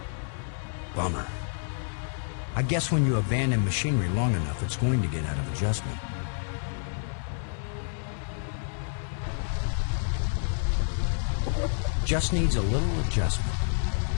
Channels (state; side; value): silent; right; 59 dB below the other